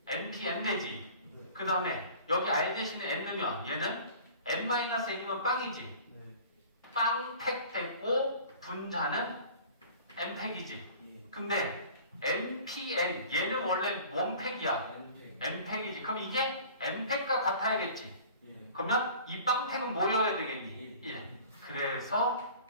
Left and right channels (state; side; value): inverted; both; correlation -0.44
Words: NP N 되지. 그 다음에 여기 R 대신에 N 넣으면 얘는 N-N이면 빵이지. 빵팩 됐고 분자는 N팩이지. 근데 NPN 얘는 원래 원팩이야. N팩이지. 그럼 이게 N팩과 같아야겠지. 그러면 이 빵팩은 뭐여야 되겠니? 1. 그래서